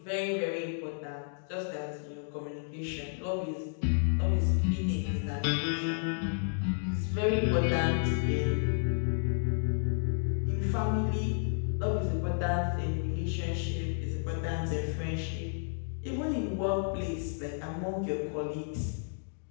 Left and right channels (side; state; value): right; silent; digital silence